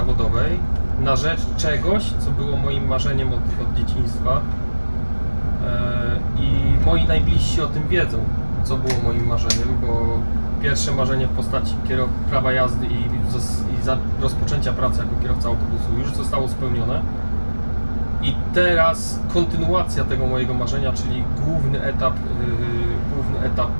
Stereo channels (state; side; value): inverted; both; correlation -1.00